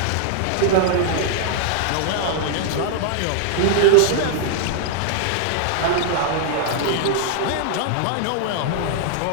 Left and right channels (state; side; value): different; both; correlation -0.01